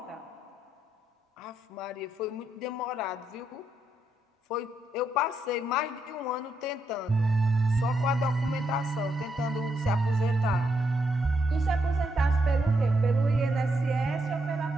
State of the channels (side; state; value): both; normal; correlation 0.79